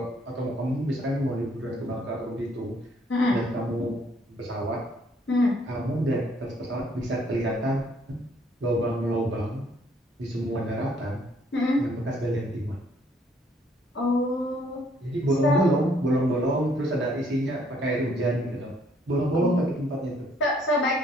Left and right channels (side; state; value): both; normal; correlation 0.65